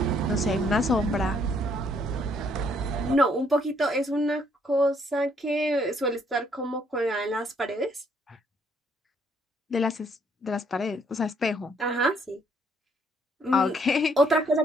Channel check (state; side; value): normal; both; correlation 0.68